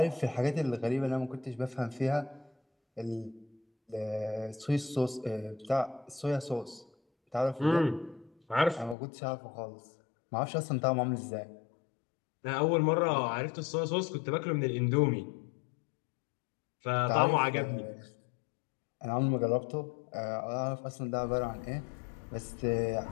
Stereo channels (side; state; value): right; drops out; at 9.0 s